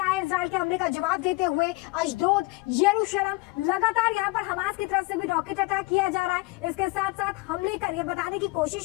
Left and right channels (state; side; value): quieter; right; 23.8 dB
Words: है इजराइल के हमले का जवाब देते हुए। अशदोद, यरूशलेम, लगातार यहाँ पर हमास की तरफ से भी रॉकेट अटैक किया जा रहा है। इसके साथ साथ हमले कर ये बताने की